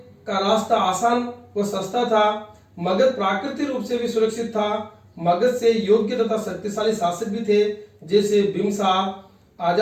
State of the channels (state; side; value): identical; both; correlation 1.00